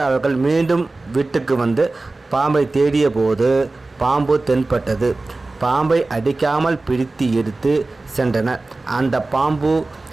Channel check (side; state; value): left; quieter; 3.2 dB